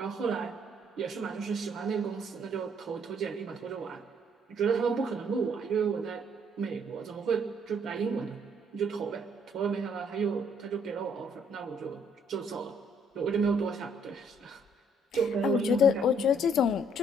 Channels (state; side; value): normal; both; correlation 0.66